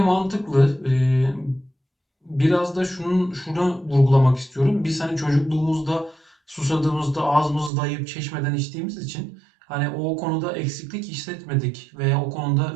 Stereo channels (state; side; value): drops out; left; at 7.7 s